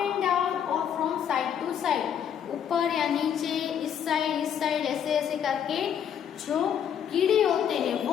down और फ्रॉम साइड टू साइड, ऊपर या नीचे, इस साइड ऐसे ऐसे करके जो कीड़े होते हैं,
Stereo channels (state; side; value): quieter; right; 8.7 dB